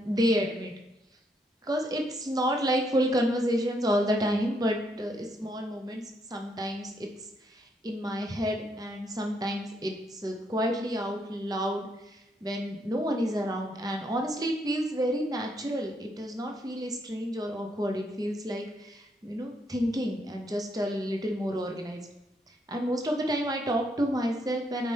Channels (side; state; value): both; normal; correlation 0.74